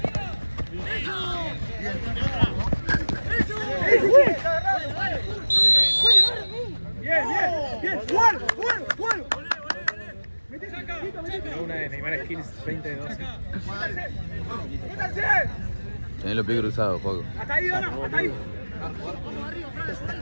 ¡Bien! ¡Juan! Una de Neymar Skills 20 de 12. ¡Métanse! Tenés los pies cruzados, Juaco. ¡Hasta ahí, Dona! ¡Hasta ahí!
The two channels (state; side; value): inverted; both; correlation -1.00